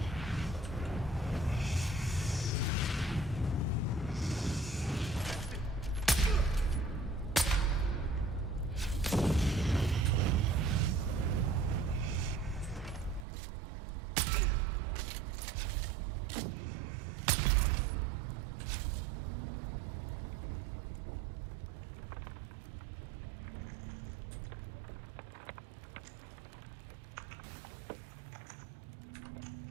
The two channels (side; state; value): left; drops out; at 13.2 s